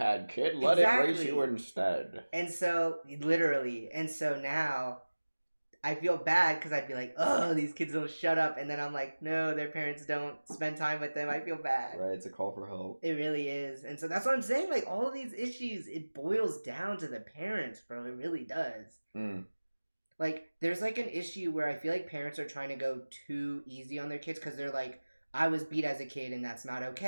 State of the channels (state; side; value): inverted; both; correlation -1.00